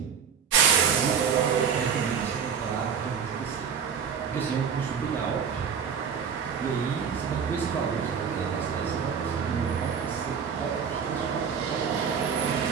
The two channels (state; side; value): quieter; left; 7.0 dB